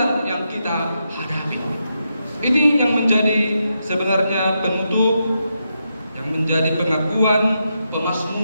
yang kita hadapi. Ini yang menjadi sebenarnya penutup, yang menjadi pengakuan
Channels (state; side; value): inverted; both; correlation -0.84